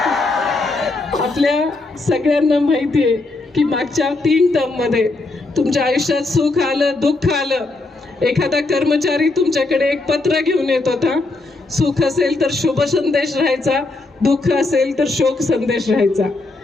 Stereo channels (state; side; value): quieter; right; 3.2 dB